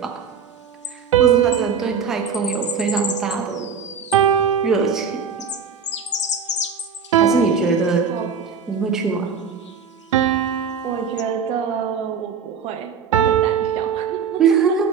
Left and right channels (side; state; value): left; quieter; 6.3 dB